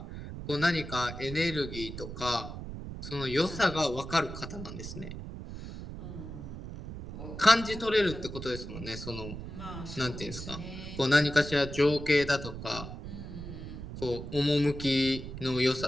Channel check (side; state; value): right; noise; rumble, 9 dB below the sound